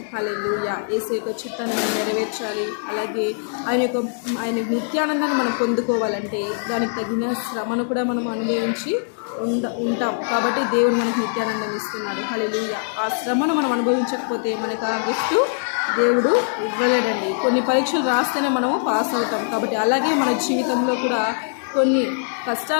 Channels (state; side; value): silent; right; digital silence